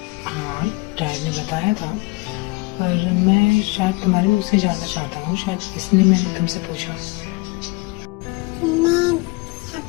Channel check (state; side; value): quieter; right; 25.6 dB